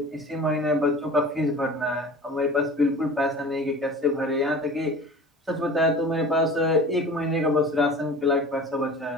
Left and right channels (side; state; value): both; normal; correlation 0.39